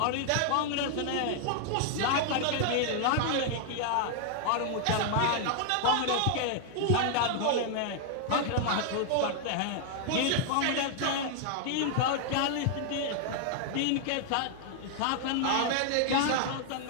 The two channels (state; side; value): different; both; correlation 0.00